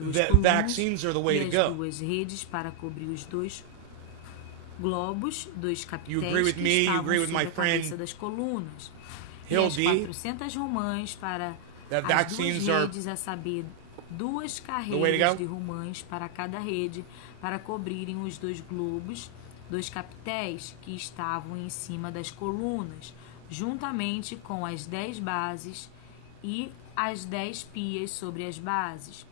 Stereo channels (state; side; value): different; both; correlation 0.00